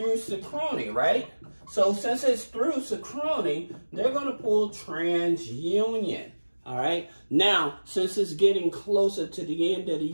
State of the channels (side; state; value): both; inverted; correlation -1.00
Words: Synchrony, right? So since it's through Synchrony, they're going to pull TransUnion, all right? Now, since it's getting closer to the end of the